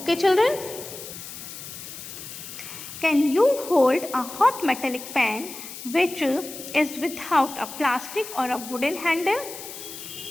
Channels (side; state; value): left; noise; hiss, 11 dB below the sound